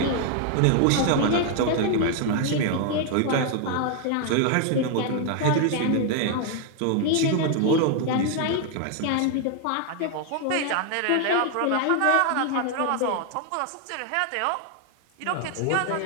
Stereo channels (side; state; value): both; different; correlation 0.00